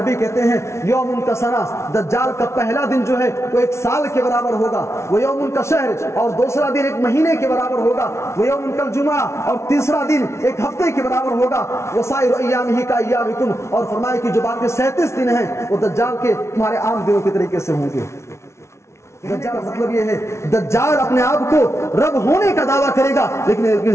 کہتے ہیں یوم کا سنا، دجال کا پہلا دن جو ہے وہ 1 سال کے برابر ہوگا. وہ یوم کا شہر، اور دوسرا دن 1 مہینے کے برابر ہوگا. وہ یوم کا جمعہ، اور تیسرا دن 1 ہفتے کے برابر ہوگا. وسائر ایامہ کا ایامکم، اور فرمایا کہ جو باقی 37 دن ہیں وہ دجال کے تمہارے عام دنوں کے طریقے سے ہوں گے. دجال کا مطلب یہ ہے دجال اپنے آپ کو رب ہونے کا دعویٰ کرے گا لیکن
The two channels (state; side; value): late; right; 0.13 ms